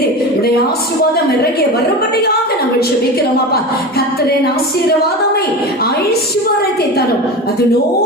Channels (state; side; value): normal; both; correlation 0.27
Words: உடைய ஆசீர்வாதம் இறங்கிய வரும்படியாக நாங்கள் ஜெபிக்கிறோம் அப்பா. கர்த்தரின் ஆசீர்வாதமே ஐஸ்வர்யத்தை தரும்,